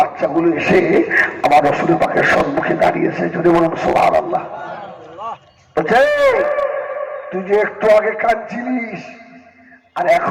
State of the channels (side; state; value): both; identical; correlation 1.00